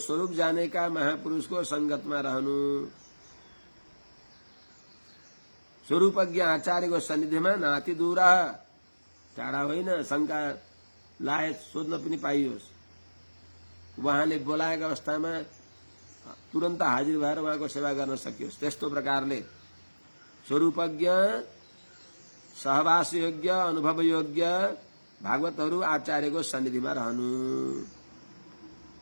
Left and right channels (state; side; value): inverted; both; correlation -1.00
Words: जानेका महापुरुषको संगतमा रहनु, स्वरूपज्ञ आचार्यको सन्निधिमा नाति दूर, टाढा होइन, शंका लायक सोध्न पनि पाइयोस्। उहाँले बोलाएका अवस्थामा तुरन्त हाजिर भएर उहाँको सेवा गर्न सकियोस्। त्यस्तो प्रकारले स्वरूपज्ञ, सहवास योग्य, अनुभव योग्य भागवतहरू आचार्यको सन्निधिमा रहनु।